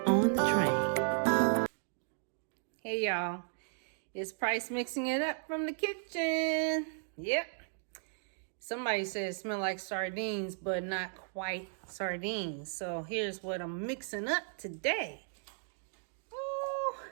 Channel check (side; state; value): left; silent; digital silence